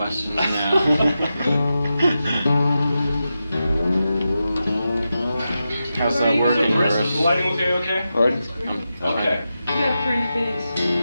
now. How's that working, Chris? Chris? The lighting okay? Pardon? Okay. You got a pretty face.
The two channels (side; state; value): both; inverted; correlation -0.90